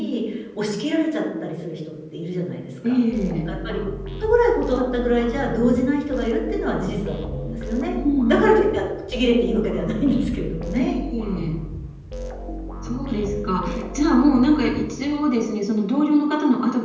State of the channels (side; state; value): both; identical; correlation 1.00